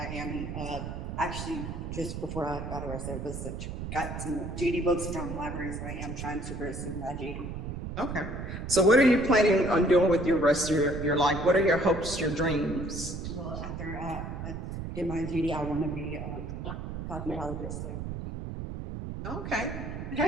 am actually just before I got arrested, got some judy books from the library, so I am trying to pursue my judy. Okay. So what are you planning on doing with your rest of your life? What are your hopes, your dreams? Well, after I get my judy, I want to be a cosmetologist. So. Okay.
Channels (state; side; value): noise; right; rumble, 6 dB below the sound